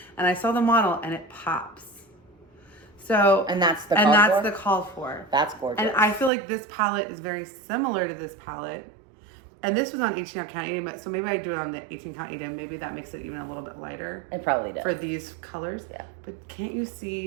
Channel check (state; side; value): drops out; left; at 6.3 s